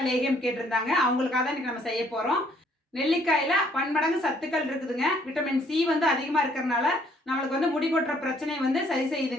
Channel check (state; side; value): normal; both; correlation 0.64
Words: லேகியம் கேட்டிருந்தாங்க. அவங்களுக்காக தான் இன்னைக்கு நம்ம செய்ய போறோம். நெல்லிக்காயில பன்மடங்கு சத்துக்கள் இருக்குதுங்க. விட்டமின் சி வந்து அதிகமா இருக்கிறதுனால நம்மளுக்கு வந்து முடி கொட்டுற பிரச்சனையை வந்து சரி